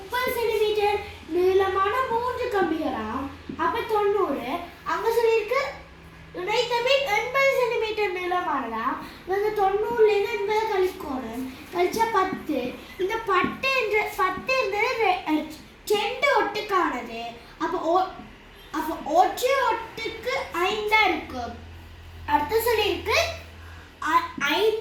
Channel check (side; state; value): both; identical; correlation 1.00